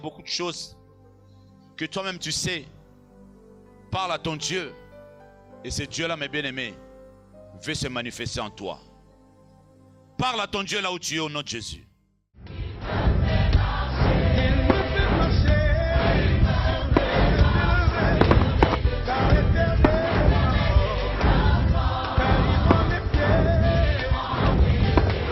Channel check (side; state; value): both; identical; correlation 1.00